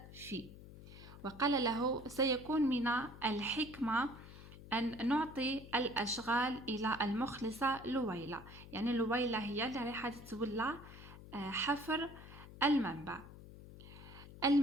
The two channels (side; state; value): left; noise; hum, 16 dB below the sound